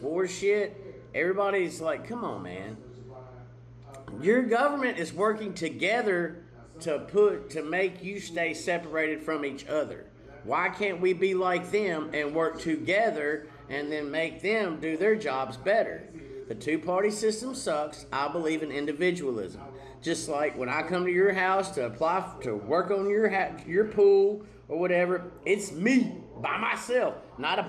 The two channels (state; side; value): identical; both; correlation 1.00